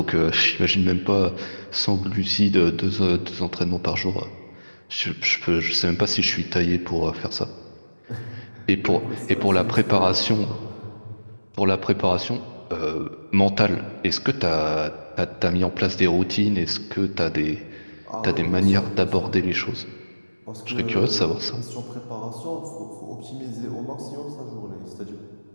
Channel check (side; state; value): both; inverted; correlation -1.00